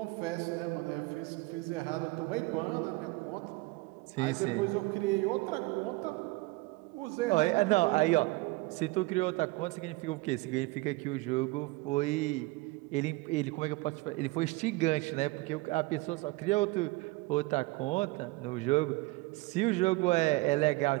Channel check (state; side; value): quieter; left; 22.6 dB